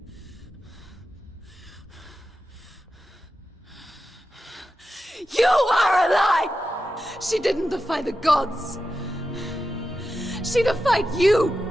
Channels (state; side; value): normal; both; correlation 0.91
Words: You are a lie! She didn't defy the gods. She defied you.